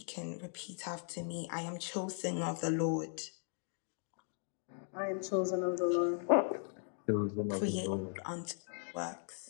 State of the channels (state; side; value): silent; right; 52 dB below the other